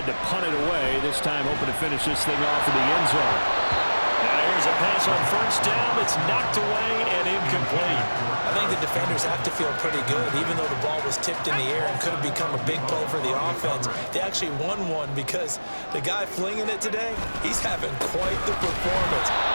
to punt it away. This time hoping to finish this thing off in the end zone. Now here's a pass on first down that's knocked away and incomplete. I think the defenders have to feel pretty good. Even though the ball was tipped in the air and could have become a big play for the offense, they actually won one because the guy flinging it today, he's having quite the performance.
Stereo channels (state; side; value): inverted; both; correlation -1.00